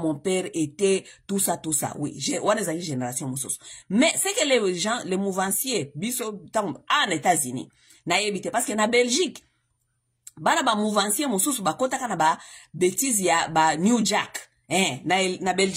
père était tout ça. Oui, on est une génération moussos. Mais c'est que les gens, les mouvanciers, biso en États-Unis, na évité parce que na Belgique, bana ba mouvancier moussos ba kota kana ba bêtise ya ba New Jack, na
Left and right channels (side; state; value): both; identical; correlation 1.00